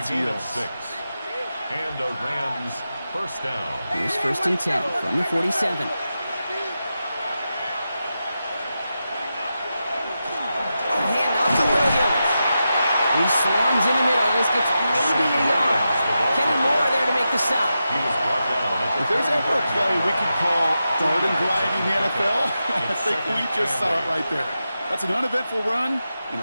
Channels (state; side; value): inverted; both; correlation -0.89